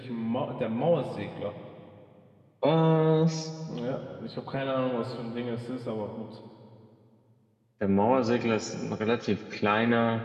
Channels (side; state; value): both; identical; correlation 1.00